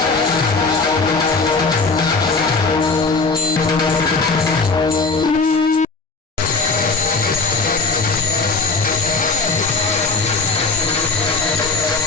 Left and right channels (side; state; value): right; quieter; 4.1 dB